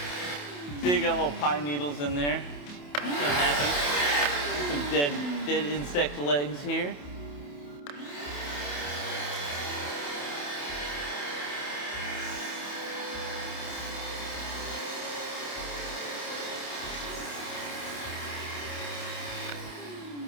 See, you got little pine needles in there. What's gonna happen? Some dead insect legs here.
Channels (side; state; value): right; late; 28 ms